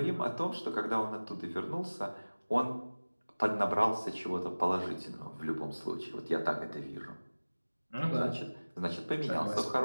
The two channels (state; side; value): inverted; both; correlation -1.00